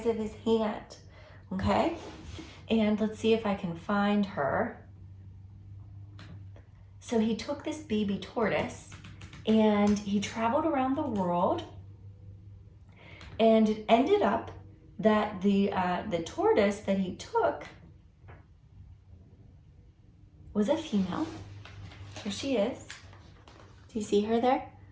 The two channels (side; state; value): both; identical; correlation 1.00